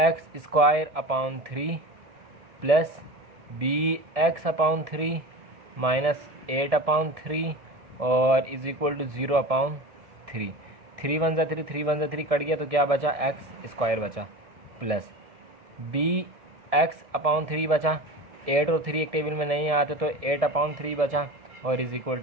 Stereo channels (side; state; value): left; late; 1.7 ms